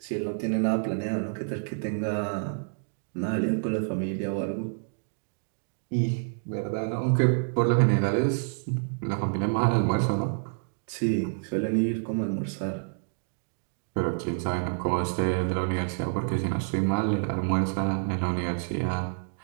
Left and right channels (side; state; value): left; silent; digital silence